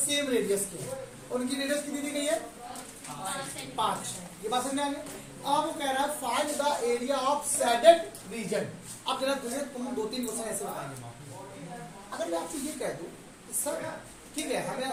रेडियस के हैं। उनकी रेडियस कितनी दी गई है 5। ये बात समझ में आ गई। अब वो कह रहा है find the area of shaded region. अब जरा तुम 2-3 क्वेश्चन ऐसे बताएंगे। अगर मैं आपसे ये कह दूं सर ठीक है हमें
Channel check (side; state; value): both; identical; correlation 1.00